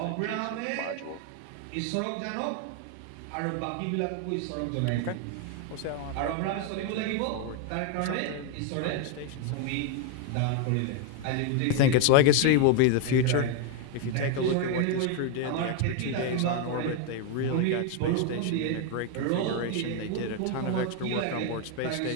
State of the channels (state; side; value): different; both; correlation 0.01